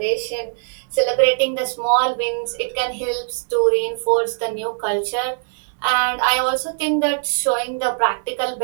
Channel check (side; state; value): left; silent; 65 dB below the other